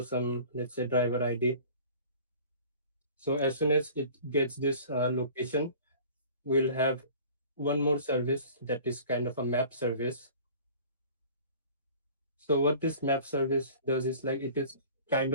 some, let's say, driver ID. So as soon as it gets this location, we'll have one more service that is kind of a map service. So what this map service does is like it is kind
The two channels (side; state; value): both; inverted; correlation -0.45